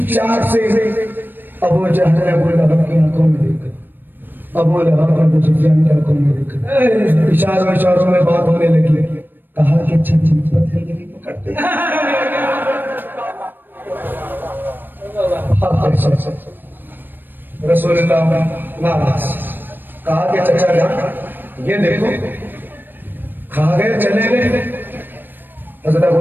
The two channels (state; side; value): late; left; 0.093 ms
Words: से अबू जहल अबू लहब की आंखों में देखा, अबू लहब अबू सुफियान की आंखों में देखा, इशारों इशारों में बात होने लगी। कहा कि अच्छा पत्थर पकड़ते रसूलुल्लाह नाराज। कहा कि चचा जान ये देखो, खा गए चले गए। हज़रत अबू